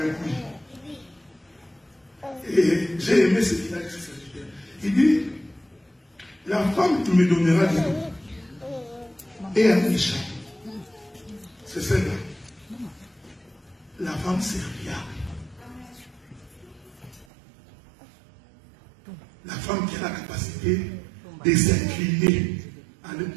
puits. Et j'ai aimé ce qu'il a dit. Il dit, la femme qui me donnera de l'eau et un méchant, c'est celle-là. La femme serviable. La femme qui a la capacité de s'incliner à aller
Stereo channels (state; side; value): drops out; left; at 17.2 s